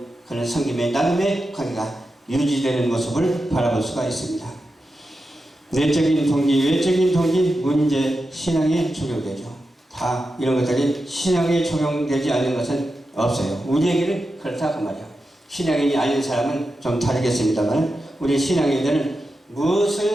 그런 섬김의 나눔의 관계가 유지되는 모습을 바라볼 수가 있습니다. 내적인 동기, 외적인 동기, 문제, 신앙에 적용되죠. 다 이런 것들이 신앙에 적용되지 않는 것은 없어요. 우리에게는 그렇다 그 말이에요. 신앙인이 아닌 사람은 좀 다르겠습니다만 우리 신앙인들은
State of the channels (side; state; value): both; normal; correlation 0.90